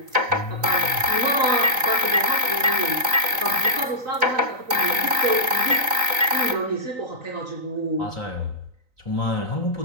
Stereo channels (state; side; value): late; left; 3.9 ms